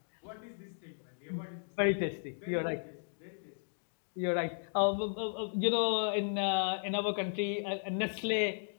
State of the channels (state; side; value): silent; right; digital silence